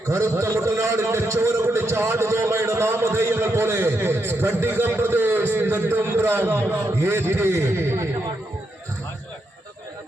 കറുത്ത മുട്ടനാടിന്റെ ചോര കുടിച്ച ആടുതോമയുടെ നാമധേയങ്ങൾ പോലെ സ്ഫടികം പ്രദേശ് നെടുമ്പ്രം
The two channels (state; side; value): normal; both; correlation 0.82